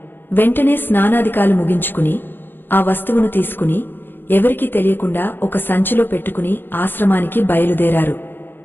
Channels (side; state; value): right; late; 0.096 ms